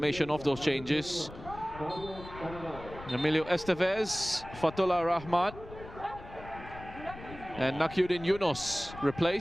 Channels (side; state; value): left; noise; rumble, 15 dB below the sound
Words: of those changes. Emilio Estevez, Fatullah Rahmat. And Nakiuddin Yunus